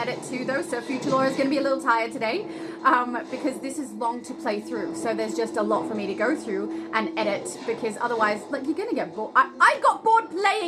too, though, so Future Laura is going to be a little tired today because this is long to play through. So there's just a lot for me to go through and edit because otherwise, like, you're going to get bored. I got bored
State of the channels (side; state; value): both; identical; correlation 1.00